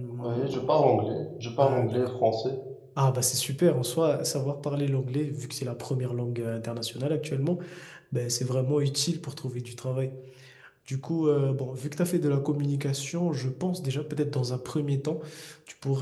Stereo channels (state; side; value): identical; both; correlation 1.00